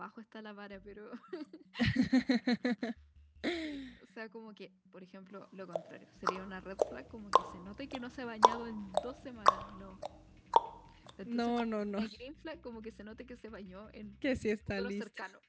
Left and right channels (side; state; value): both; identical; correlation 1.00